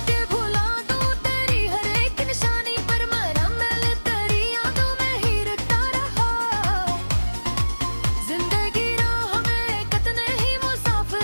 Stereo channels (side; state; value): both; inverted; correlation -1.00